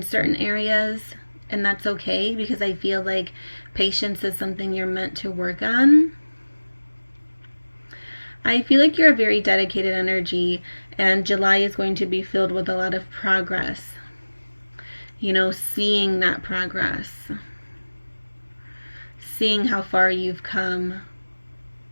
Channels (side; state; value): both; inverted; correlation -1.00